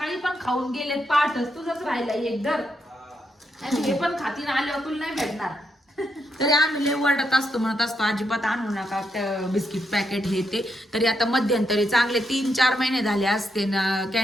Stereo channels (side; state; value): both; normal; correlation 0.81